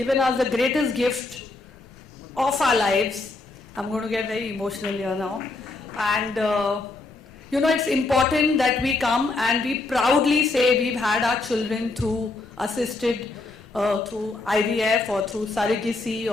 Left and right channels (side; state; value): right; quieter; 3.4 dB